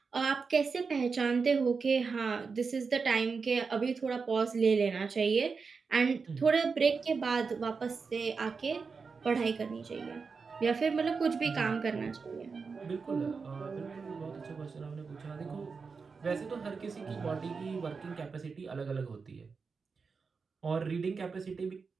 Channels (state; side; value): quieter; left; 5.0 dB